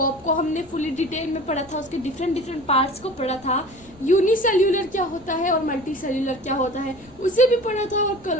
को हमने फुली डिटेल में पढ़ा था, उसके डिफरेंट पार्ट्स को पढ़ा था, यूनिसेल्यूलर क्या होता है और मल्टी सेल्यूलर क्या होता है उसे भी पढ़ा था, और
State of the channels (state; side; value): noise; left; rumble, 25 dB below the sound